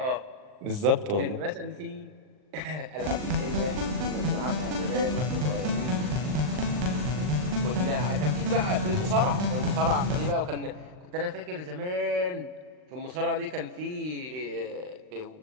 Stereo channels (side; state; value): left; late; 39 ms